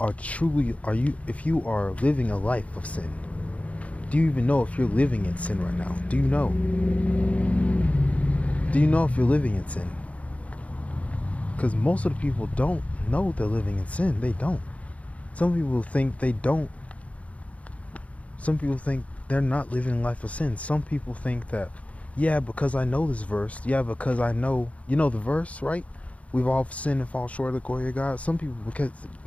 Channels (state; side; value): late; right; 0.065 ms